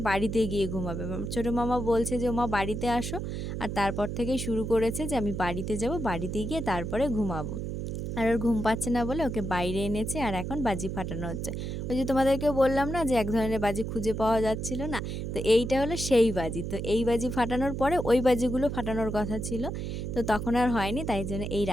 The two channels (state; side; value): noise; right; hum, 4 dB below the sound